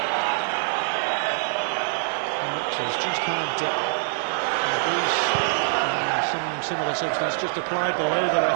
Has just had some similar substance just applied below the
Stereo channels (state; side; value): silent; left; digital silence